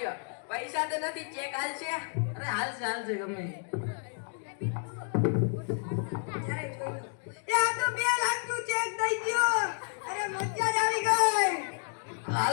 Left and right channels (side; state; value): right; silent; 56 dB below the other